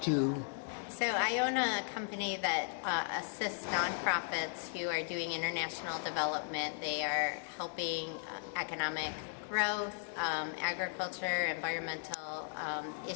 to... So I own a company that assists nonprofits who are doing international development. They are helping economic growth, agriculture, environmental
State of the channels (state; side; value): silent; right; digital silence